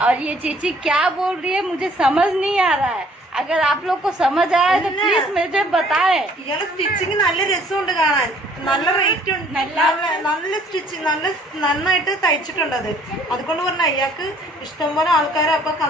और ये चेची क्या बोल रही है मुझे समझ नहीं आ रहा है। अगर आप लोग को समझ आया तो प्लीज मुझे बताएं। ഇയാളെ സ്റ്റിച്ചിങ് നല്ല രസമുണ്ട് കാണാൻ, നല്ല റേറ്റ് ഉണ്ട്, നല്ല സ്റ്റിച്ചിങ് നന്നായിട്ട് തയ്ച്ചിട്ടുണ്ട്. അതുകൊണ്ട് പറഞ്ഞാൽ ഇയാൾക്ക് ഇഷ്ടംപോലെ ആൾക്കാരെ അപ്പൊ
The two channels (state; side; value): normal; both; correlation 0.59